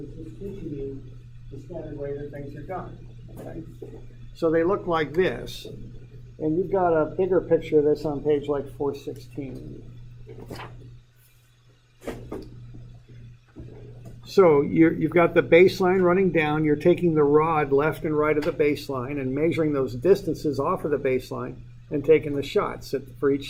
just teaching you the standard way that things are done. Okay? So they look like this. And you've got a bigger picture of this on page like 416. So you've got the baseline running down. You're taking the rod left and right of the baseline and measuring those distances off of the baseline and taking the shots for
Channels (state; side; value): identical; both; correlation 1.00